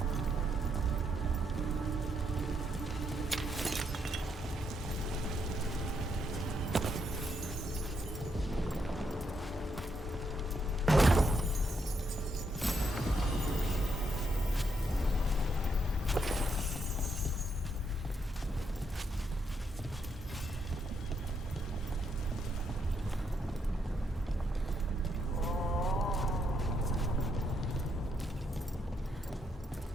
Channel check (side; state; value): both; normal; correlation 0.77